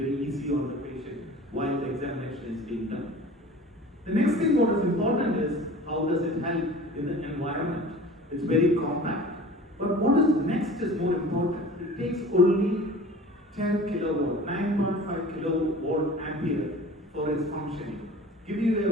easy on the patient while the examination is being done. The next thing what is important is how does it help in the environment. It's very compact. But what is next is more important. It takes only 10 kilowatt, 9.5 kilowatt ampere for its functioning. Give you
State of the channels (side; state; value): both; normal; correlation 0.42